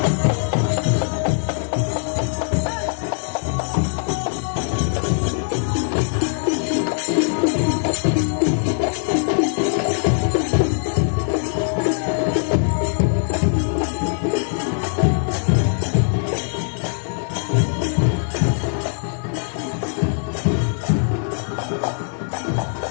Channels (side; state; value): right; silent; digital silence